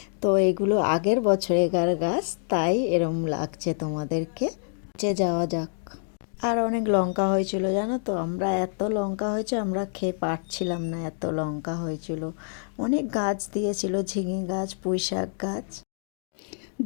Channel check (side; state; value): right; silent; digital silence